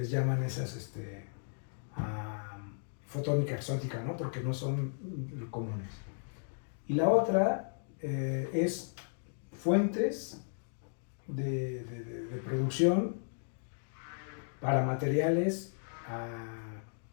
llaman esas, fotónica exótica, ¿no? Porque no son comunes. Y la otra es fuentes de producción para materiales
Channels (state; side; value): silent; right; digital silence